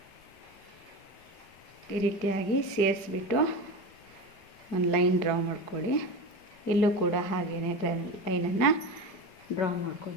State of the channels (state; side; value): late; right; 5.3 ms